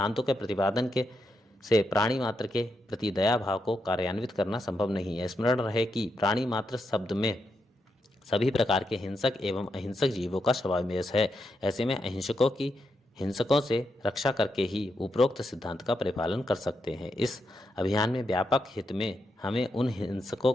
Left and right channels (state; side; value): normal; both; correlation 0.83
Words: के प्रतिपादन के से प्राणी मात्र के प्रति दया भाव को कार्यान्वित करना संभव नहीं है। स्मरण रहे कि प्राणी मात्र शब्द में सभी प्रकार के हिंसक एवं अहिंसक जीवों का समावेश है। ऐसे में अहिंसकों की हिंसकों से रक्षा करके ही उपरोक्त सिद्धांत का परिपालन कर सकते हैं। इस अभियान में व्यापक हित में हमें उन हिंसकों